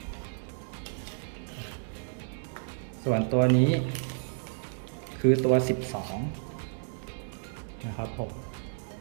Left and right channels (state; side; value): silent; left; digital silence